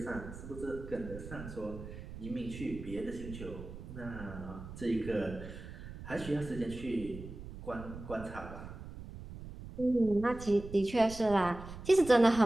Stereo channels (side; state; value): right; noise; rumble, 12 dB below the sound